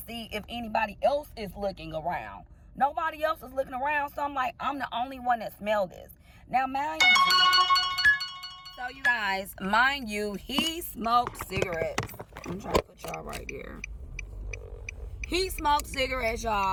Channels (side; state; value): both; identical; correlation 1.00